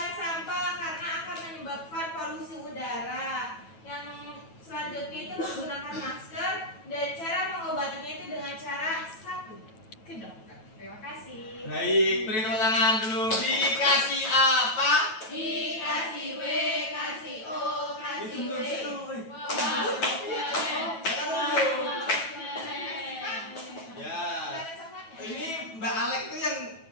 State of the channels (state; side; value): late; right; 9.2 ms